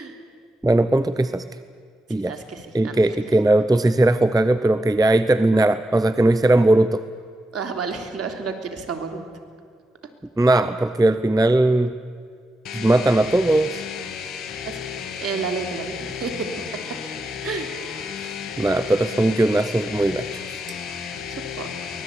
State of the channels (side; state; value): both; normal; correlation 0.88